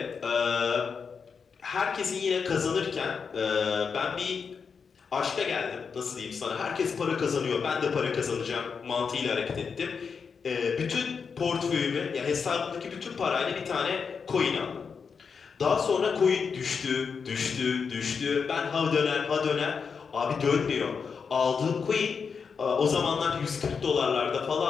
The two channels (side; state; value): right; quieter; 5.8 dB